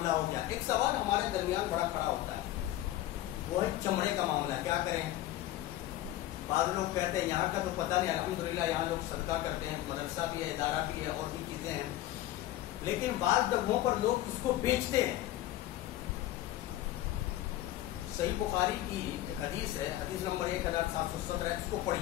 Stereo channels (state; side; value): quieter; right; 14.6 dB